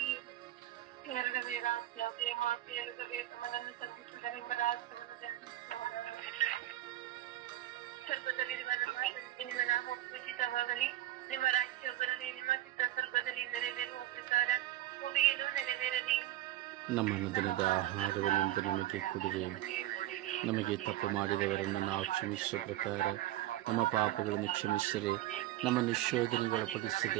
ಎರಡನೇ ರಾಜ್ಯ ಮಾತೆಯಲ್ಲದೆ ತಮ್ಮನನ್ನು ಸಂಧಿಸಿದರೆಂಬ ರಾಷ್ಟ್ರವನ್ನು ಧ್ಯಾನಿಸೋಣ. ಸ್ವರ್ಗದಲ್ಲಿರುವ ನಮ್ಮ ತಂದೆ, ನಿಮ್ಮ ನಾಮ ಪೂಜಿತವಾಗಲಿ, ನಿಮ್ಮ ರಾಜ್ಯ ಬರಲಿ, ನಿಮ್ಮ ಚಿತ್ತ ಸ್ವರ್ಗದಲ್ಲಿ ನೆರವೇರುವ ಪ್ರಕಾರ ಭೂಮಿಯಲ್ಲೂ ನೆರವೇರಲಿ. ನಮ್ಮ ದಿನದ ಆಹಾರವನ್ನು ನಮಗೆ ಕೊಡಿರಿ, ನಮಗೆ ತಪ್ಪು ಮಾಡಿದವರನ್ನು ನಾವು ಕ್ಷಮಿಸುವ ಪ್ರಕಾರ ನಮ್ಮ ಪಾಪಗಳನ್ನು ಕ್ಷಮಿಸಿರಿ, ನಮ್ಮನ್ನು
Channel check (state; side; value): quieter; left; 14.9 dB